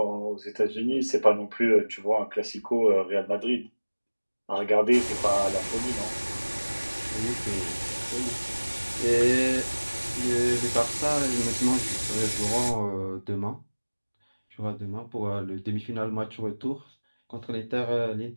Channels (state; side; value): inverted; both; correlation -1.00